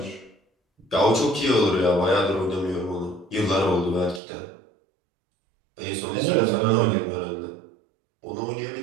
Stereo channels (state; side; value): drops out; left; at 4.2 s